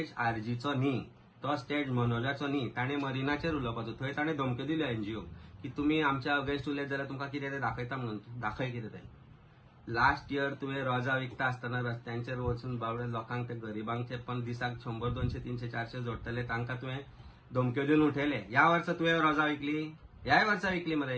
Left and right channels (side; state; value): both; identical; correlation 1.00